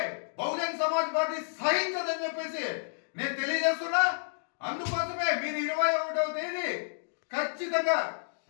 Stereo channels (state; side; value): silent; right; digital silence